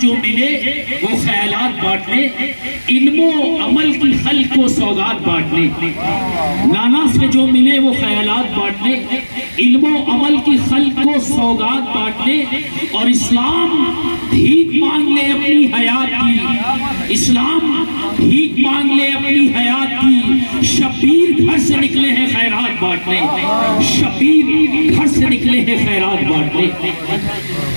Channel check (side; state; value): both; inverted; correlation -1.00